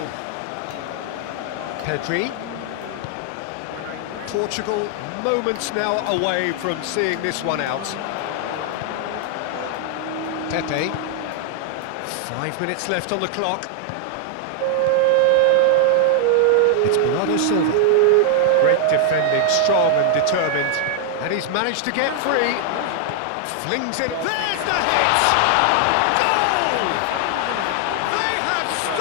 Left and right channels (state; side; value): different; both; correlation 0.00